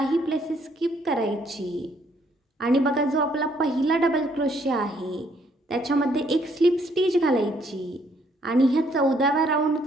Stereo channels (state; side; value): normal; both; correlation 0.68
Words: प्लेसेस स्किप करायची आणि बघा जो आपला पहिला डबल क्रोशे आहे त्याच्यामध्ये एक स्लिप स्टिच घालायची आणि ह्या 14व्या